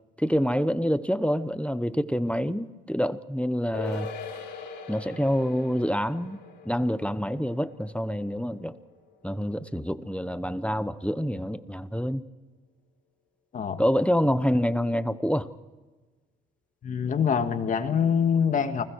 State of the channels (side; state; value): both; normal; correlation 0.86